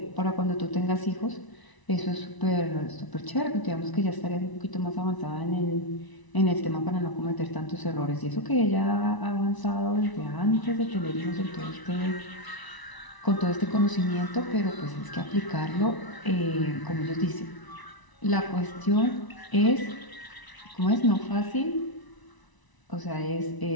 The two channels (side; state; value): right; late; 1.0 ms